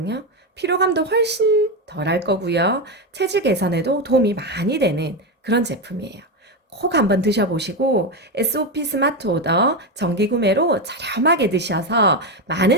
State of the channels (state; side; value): normal; both; correlation 0.12